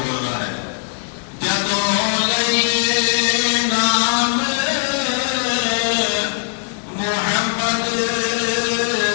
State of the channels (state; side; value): silent; right; digital silence